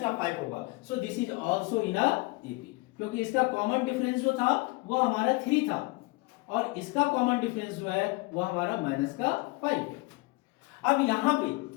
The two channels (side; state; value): right; quieter; 24.0 dB